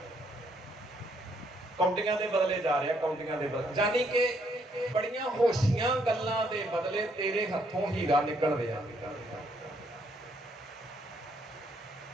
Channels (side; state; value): both; normal; correlation 0.71